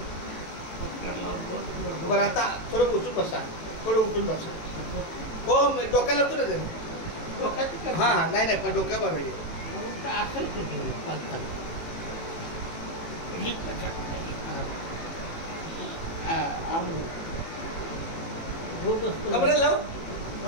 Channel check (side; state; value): right; late; 18 ms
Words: बरं आता थोडं उचलून बसा, थोडं उचलून बसा. हो डोक्याला होतो ना तरी. डोक्यात हां हां नाही पण डोक्या बरं आहे. कमरेला लाव,